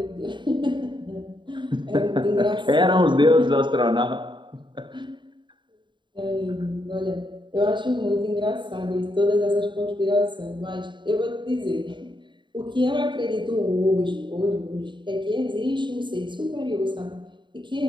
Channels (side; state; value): left; late; 0.23 ms